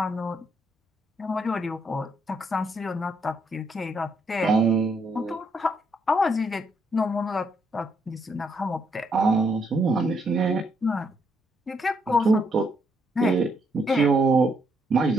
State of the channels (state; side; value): normal; both; correlation 0.75